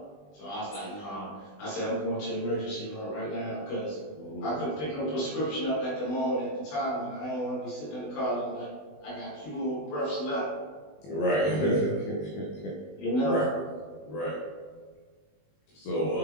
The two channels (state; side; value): late; right; 20 ms